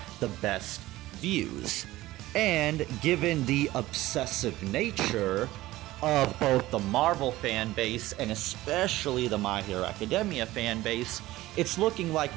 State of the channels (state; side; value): quieter; left; 17.0 dB